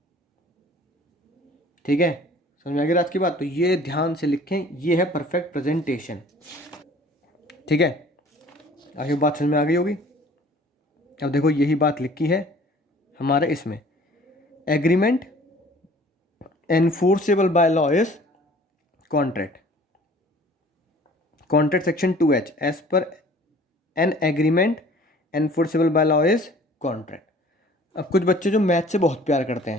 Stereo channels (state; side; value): normal; both; correlation 0.50